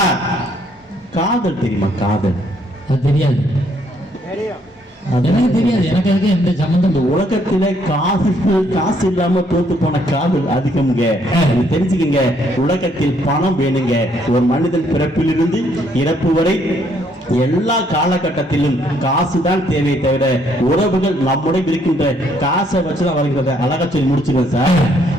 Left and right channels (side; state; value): both; normal; correlation 0.68